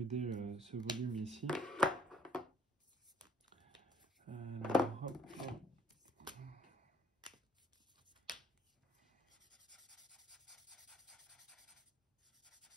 ce volume ici. Alors, hop, hop.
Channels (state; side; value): normal; both; correlation 0.62